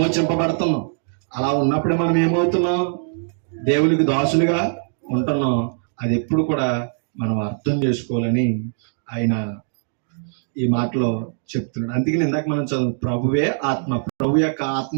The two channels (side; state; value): left; silent; digital silence